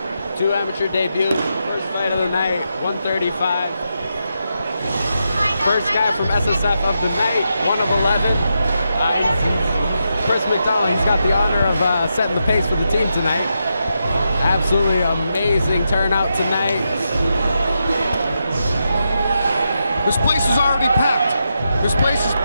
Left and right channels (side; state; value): both; inverted; correlation -0.85